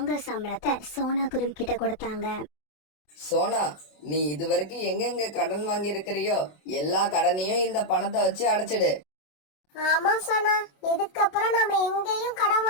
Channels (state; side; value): late; right; 27 ms